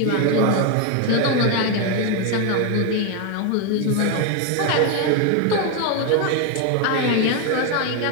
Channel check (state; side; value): different; both; correlation 0.01